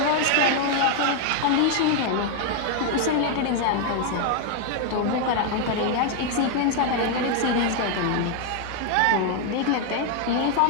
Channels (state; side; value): different; both; correlation 0.00